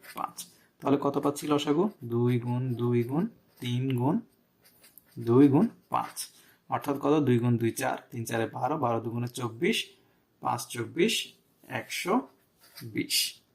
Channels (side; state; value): both; identical; correlation 1.00